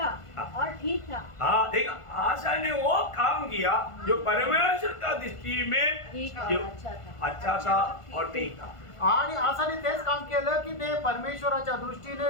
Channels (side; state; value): right; late; 1.5 ms